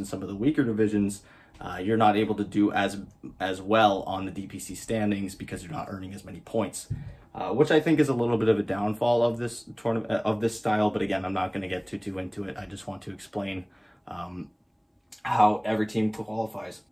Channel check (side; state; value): both; identical; correlation 1.00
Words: some of the weaker divisions, you're not able to do as well on the DPC standings because you're not earning as many points. Which I think is a little bit of a downfall of this tournament, of this style. But again, I'm not going to get too into it. I just want to explain how every team qualifies.